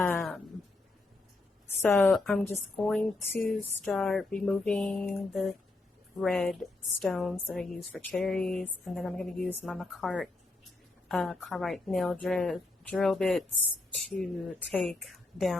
So I'm just going to start removing the red stones that I use for cherries, and then I'm going to use my Makartt carbide nail drill bits to take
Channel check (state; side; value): quieter; right; 3.1 dB